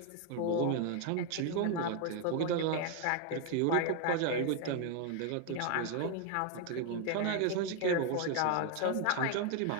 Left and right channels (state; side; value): different; both; correlation 0.01